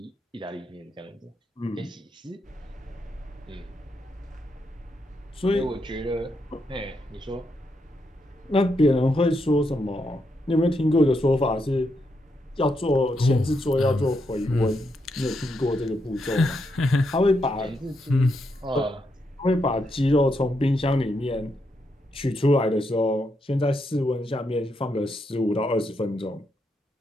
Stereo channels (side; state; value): both; normal; correlation 0.81